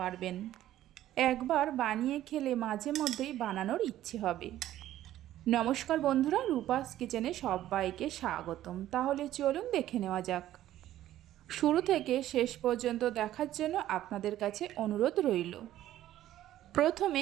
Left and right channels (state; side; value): quieter; left; 13.2 dB